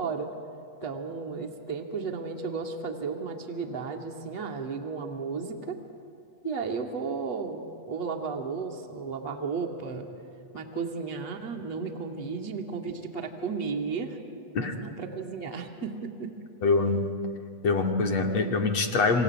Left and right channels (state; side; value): late; right; 8.3 ms